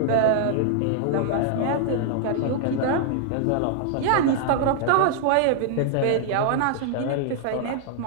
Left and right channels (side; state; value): both; different; correlation -0.01